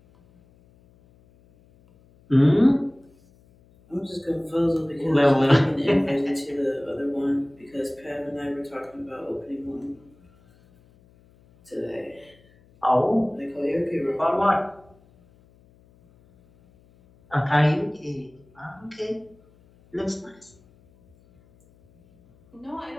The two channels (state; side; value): noise; left; hum, 30 dB below the sound